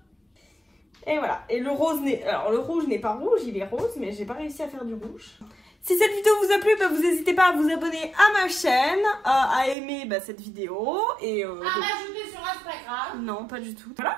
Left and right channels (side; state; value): left; drops out; at 9.8 s